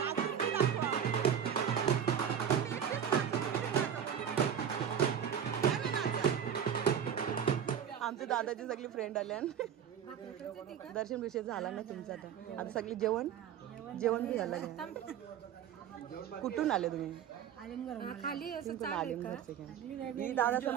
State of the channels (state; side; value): quieter; left; 8.7 dB